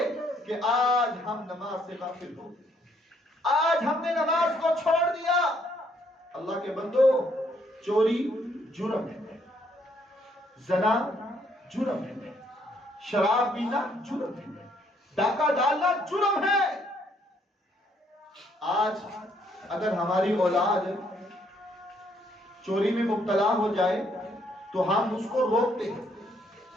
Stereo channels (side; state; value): both; normal; correlation 0.69